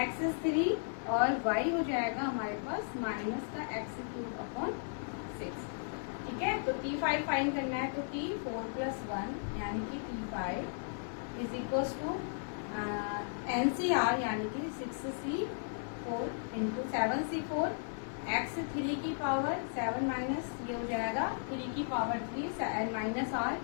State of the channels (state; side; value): silent; right; digital silence